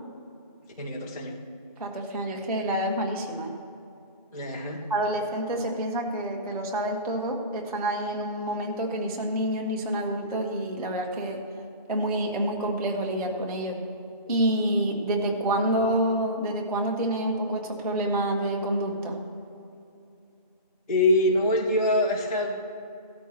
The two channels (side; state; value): both; inverted; correlation -0.31